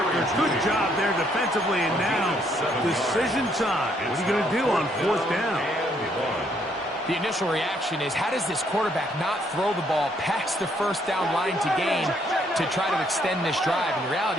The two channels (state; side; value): normal; both; correlation 0.69